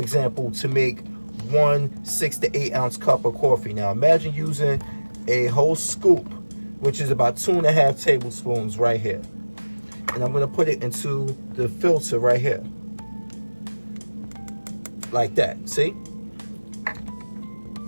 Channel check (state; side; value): inverted; both; correlation -1.00